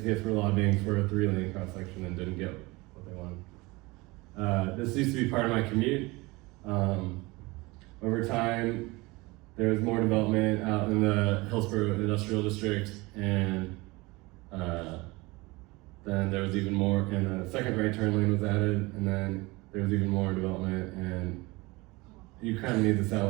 case, were lobbying for a 3-lane cross-section and didn't get what they wanted. This used to be part of my commute. Over time, there was more development out in the Hillsborough Industrial District, and then there was even more, and a second right turn lane was added, and then there was even more development, and you kind of need the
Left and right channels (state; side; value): quieter; left; 23.1 dB